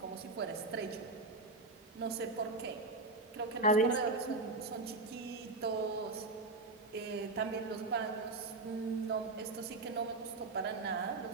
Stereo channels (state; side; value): quieter; left; 3.3 dB